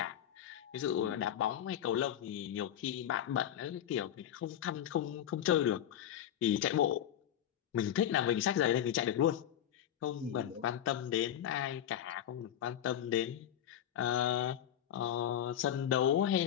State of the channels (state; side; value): quieter; right; 10.5 dB